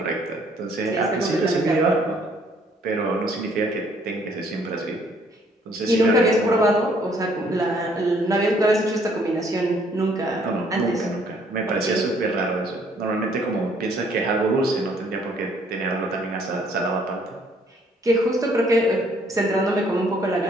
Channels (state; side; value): normal; both; correlation 0.64